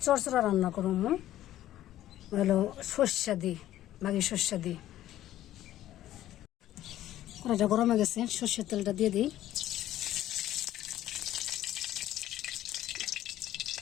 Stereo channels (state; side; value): quieter; right; 13.4 dB